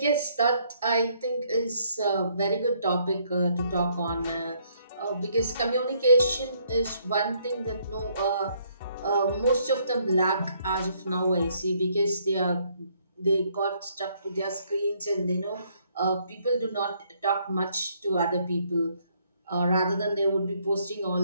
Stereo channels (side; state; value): both; inverted; correlation -0.69